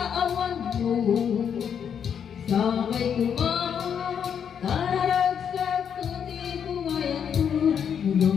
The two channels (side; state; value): right; quieter; 7.9 dB